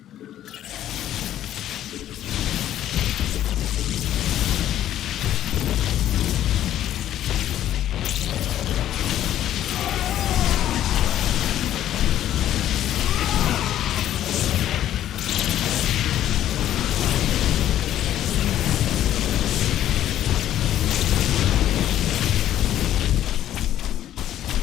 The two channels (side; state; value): right; quieter; 11.9 dB